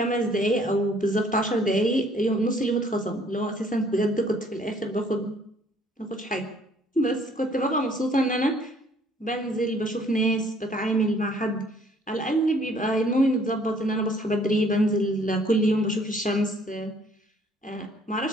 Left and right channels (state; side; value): normal; both; correlation 0.60